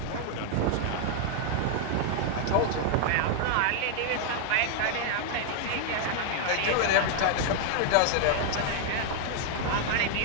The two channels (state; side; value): different; both; correlation 0.00